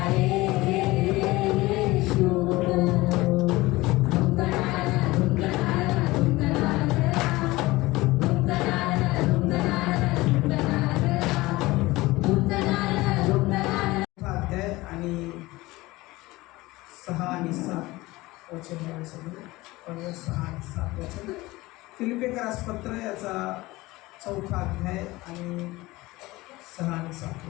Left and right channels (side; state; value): right; quieter; 20.1 dB